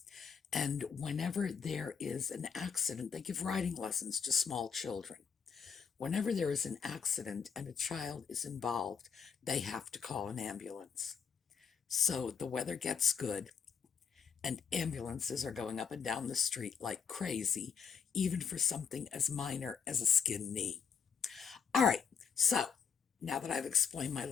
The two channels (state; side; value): quieter; right; 6.6 dB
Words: And whenever there is an accident, they give riding lessons to small children. Whenever there is an accident and a child is involved, they have to call an ambulance. So the weather gets good, and ambulances are going up and down the street like crazy, even for something as minor as a skinned knee. All right, so now that I've explained my